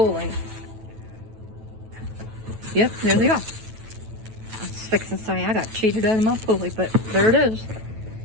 Yep, there they are. I was fixing to say I got cheated out of my pulley, but there it is.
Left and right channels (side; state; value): left; late; 9.1 ms